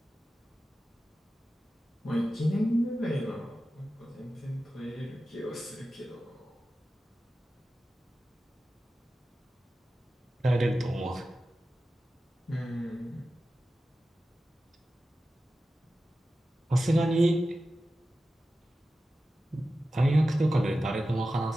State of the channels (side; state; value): both; normal; correlation 0.94